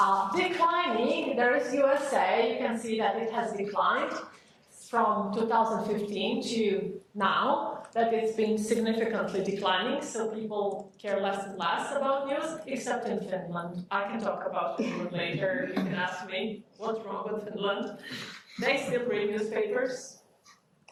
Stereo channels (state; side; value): identical; both; correlation 1.00